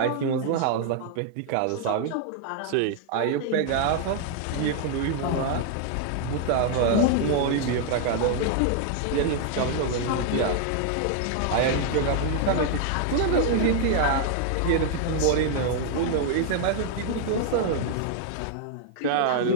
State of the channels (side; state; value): both; different; correlation 0.00